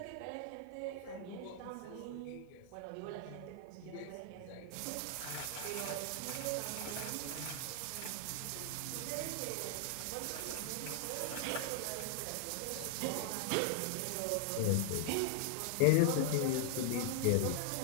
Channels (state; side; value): different; both; correlation 0.00